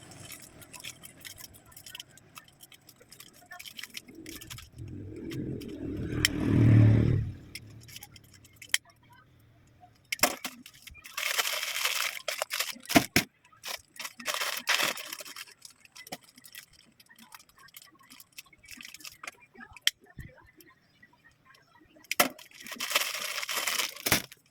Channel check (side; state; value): both; identical; correlation 1.00